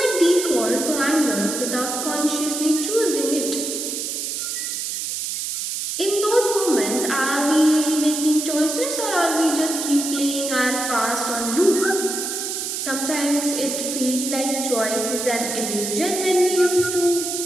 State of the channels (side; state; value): right; noise; hiss, 3 dB below the sound